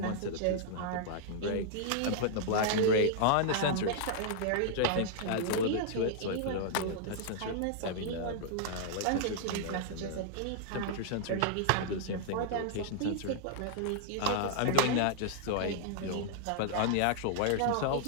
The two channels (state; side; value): different; both; correlation -0.01